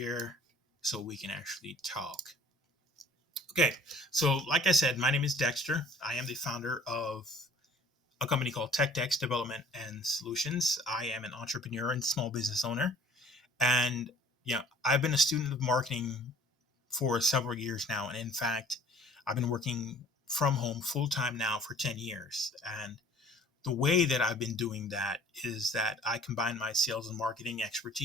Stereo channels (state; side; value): normal; both; correlation 0.53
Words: so we can actually talk. Okay, so like I said, my name is Dexter. I am the founder of a company called TechDex Development and Solutions. I am an entrepreneur and small business owner. And I've been a student of marketing for several years now. And in fact, I've been working from home full time now for 10 years. And the way that I've been doing that is that I combine my sales and marketing